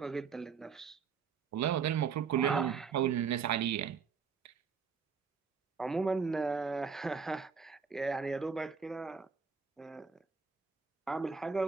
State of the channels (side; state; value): left; quieter; 6.0 dB